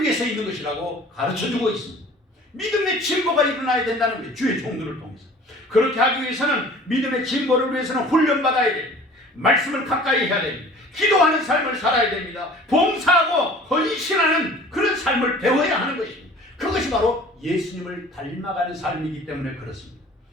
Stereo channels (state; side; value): normal; both; correlation 0.46